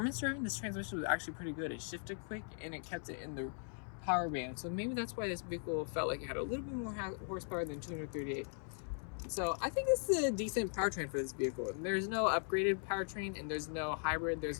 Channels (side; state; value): right; silent; 52 dB below the other